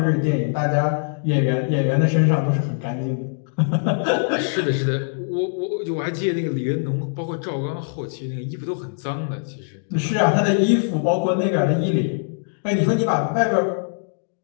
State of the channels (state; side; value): silent; right; digital silence